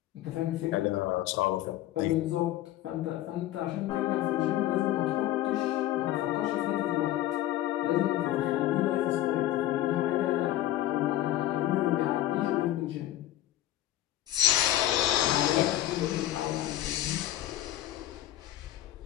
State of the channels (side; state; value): right; quieter; 13.9 dB